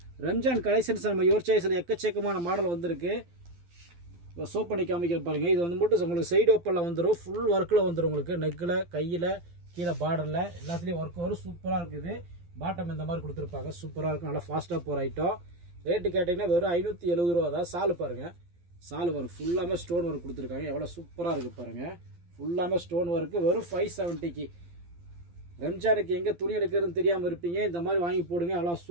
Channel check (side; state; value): left; late; 12 ms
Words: ரம்ஜான் கலெக்ஷன்ஸ் நம்ம யுவர் சாய்ஸில் எக்கச்சக்கமான மாடல் வந்திருக்கு. இப்போ சோப் பண்ணி காமிக்கிற பாருங்கள். இது வந்து மட்டும் உங்களுக்கு சைடு ஓப்பனில் வந்துடும். ஃபுல் ஒர்க்கில் வந்துடும். உங்களுக்கு நெக்கில், கையில், கீழே பார்டரில் எல்லாத்துலேயும் ஒர்க் வரும். சூப்பராக இருக்குது. பாட்டம் இந்த மாதிரி கொடுத்துருப்பாங்க. சூப்பராக இருக்கும். நல்லா ஃபாஸ்ட்டாக போகிற ஐட்டம். ரேட்டு கேட்டிங்கன்னா வெறும் 570 ரூபா தான். சால் பாருங்கள். சால் வரும். ஃபுல்லாமே ஸ்டோன் ஒர்க் கொடுத்துருக்காங்க. எவ்வளோ சூப்பராக இருக்குது பாருங்கள். ஃபுல்லாமே ஸ்டோன் ஒர்க்கு. வெறும் 570க்கு. ரம்ஜானுக்கு எங்கே துணி எடுக்கிறதுன்னு தெரியாமல் இருப்பீங்க, இந்த மாதிரி வாங்கி போடுங்க. எவ்வளோ